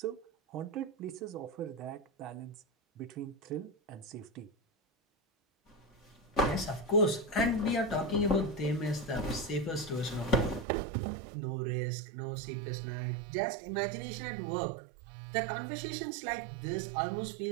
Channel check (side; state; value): left; drops out; at 10.7 s